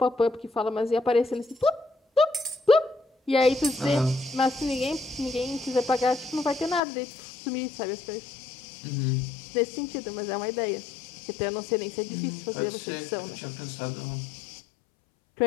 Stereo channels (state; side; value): drops out; right; at 6.8 s